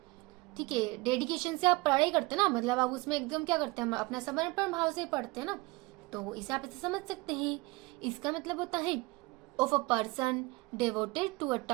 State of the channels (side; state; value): left; quieter; 23.8 dB